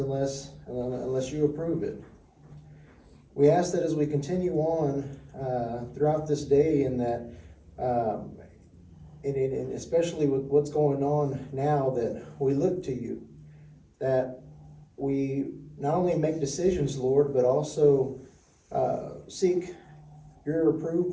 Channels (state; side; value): identical; both; correlation 1.00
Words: you approve it. We ask that as we continue on throughout this day, and that and especially with what's going on now, that we look to you, that we not only make decisions, Lord, but also seek your